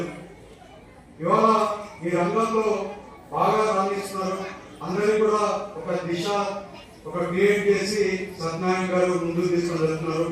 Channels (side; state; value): both; identical; correlation 1.00